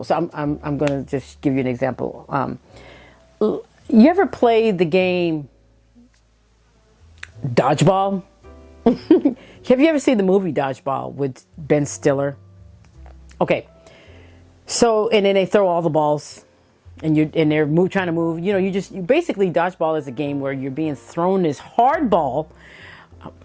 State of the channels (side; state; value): both; identical; correlation 1.00